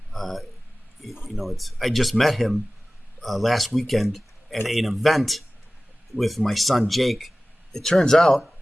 I just met him last weekend at an event with my son Jake. It turns out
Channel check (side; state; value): both; normal; correlation 0.97